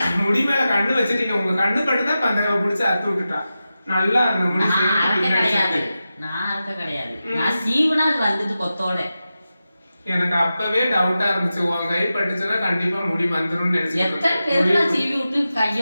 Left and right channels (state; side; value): inverted; both; correlation -0.92